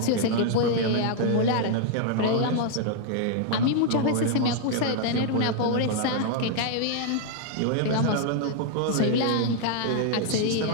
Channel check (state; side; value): different; both; correlation 0.00